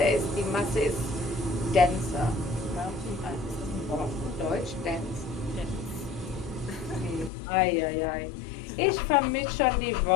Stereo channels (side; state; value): right; drops out; at 7.3 s